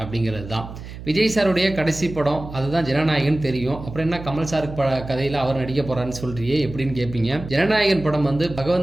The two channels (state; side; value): noise; right; hum, 12 dB below the sound